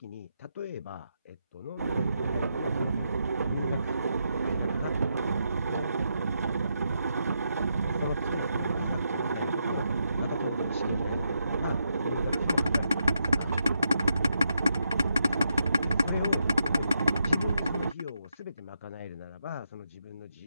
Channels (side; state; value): both; inverted; correlation -0.82